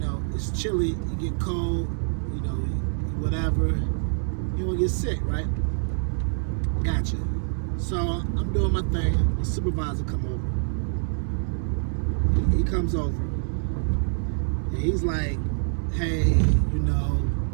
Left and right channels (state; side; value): silent; left; 61 dB below the other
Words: it's chilly, you get cold, you know, whatever, you don't get sick, right? Gotcha. So I'm doing my thing, the supervisor come over. He comes over, and he's like, "Hey, you know,